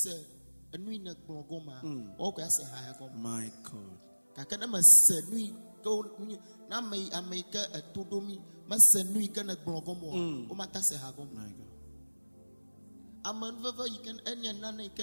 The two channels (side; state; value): both; inverted; correlation -1.00